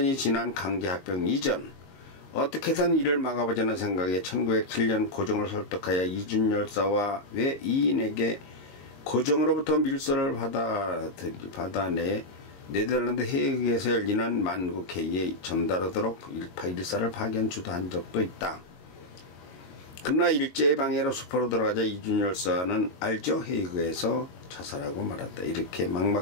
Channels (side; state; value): right; late; 22 ms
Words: 지난 강제합병 이전 어떻게든 이를 막아보자는 생각에 1907년 고종을 설득하여 이준열사와 외 2인에게 고종으로부터 밀서를 받아내 네덜란드 헤이그에서 열리는 만국회의에 전달하도록 일사를 파견 주도한 적도 있다. 그러나 일제의 방해로 수포로 들어가자 이준열사는 알죠? 헤이그에서 자살하고 말았다. 이렇게